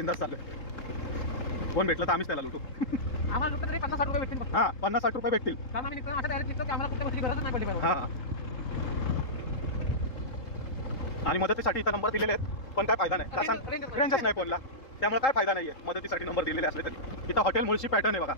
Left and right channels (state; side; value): late; right; 3.7 ms